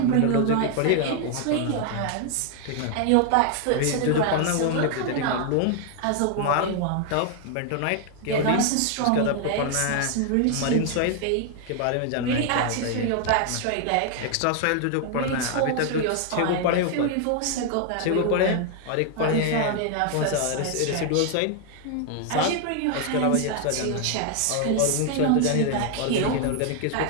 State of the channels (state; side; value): different; both; correlation 0.00